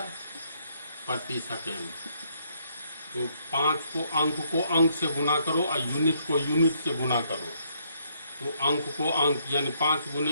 प्रति सेकेंड। तो 5 को अंक से गुना करो और यूनिट को यूनिट से गुना करो। तो अंक को अंक यानी 5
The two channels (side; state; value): both; inverted; correlation -0.71